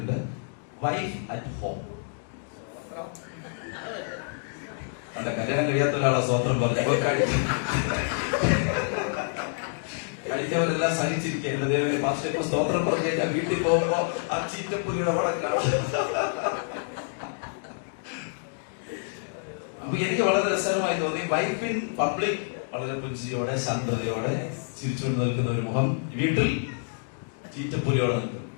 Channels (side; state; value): right; silent; digital silence